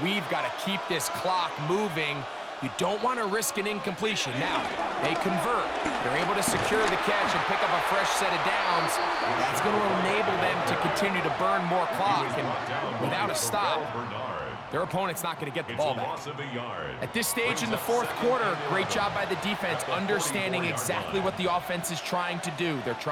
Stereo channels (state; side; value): identical; both; correlation 1.00